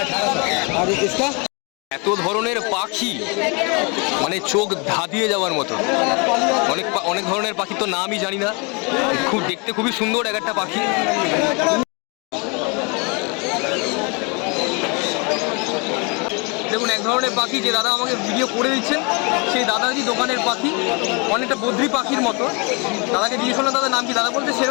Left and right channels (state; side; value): quieter; right; 31.6 dB